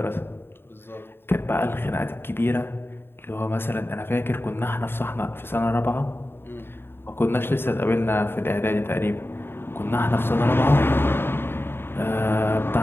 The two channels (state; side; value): late; right; 0.11 ms